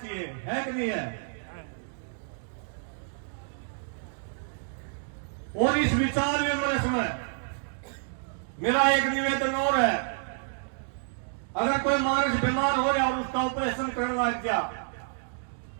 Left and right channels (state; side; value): silent; left; digital silence